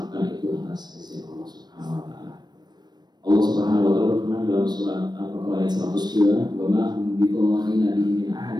itu atas izin Allah Subhanahu Wa Taala. Allah Subhanahu Wa Taala berfirman dalam surat Al-Baqarah ayat 102, "Wa ma hum biqadhina min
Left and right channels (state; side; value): late; left; 0.20 ms